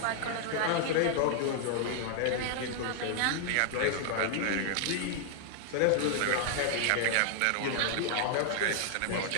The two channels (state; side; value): different; both; correlation 0.00